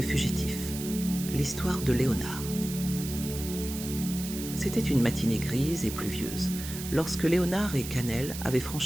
fugitif, l'histoire de Léonard. C'était une matinée grise et pluvieuse, lorsque Léonard et Cannelle avaient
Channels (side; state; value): right; noise; hiss, 9 dB below the sound